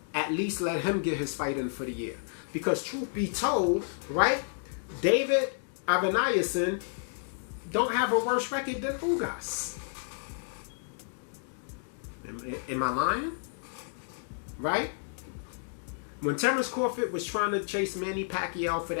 At least let him get his fight in for the year. Because truth be told, right, David Avanayasin don't have a worse record than Ugas. Am I lying? Right? When Terrence Crawford was trying to chase Manny Pacquiao for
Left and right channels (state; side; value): silent; right; digital silence